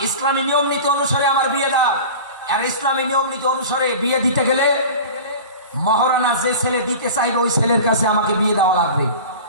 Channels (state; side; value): inverted; both; correlation -0.36